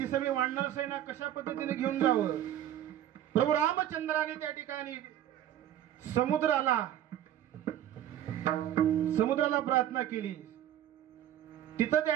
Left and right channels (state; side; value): quieter; left; 11.6 dB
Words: सगळी वानर सेना कशा पद्धतीने घेऊन जावं. प्रभू रामचंद्राने त्या ठिकाणी समुद्राला प्रार्थना केली. तिथं